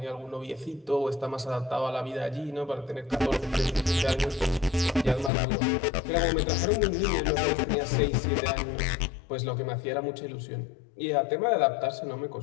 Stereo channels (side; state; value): right; drops out; at 5.3 s